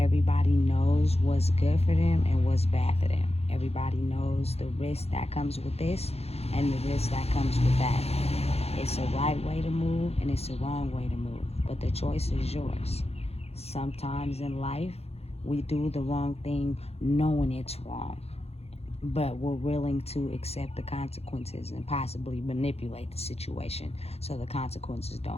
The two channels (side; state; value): right; late; 0.30 ms